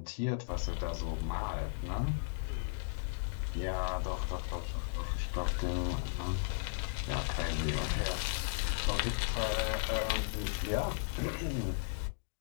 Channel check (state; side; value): silent; right; digital silence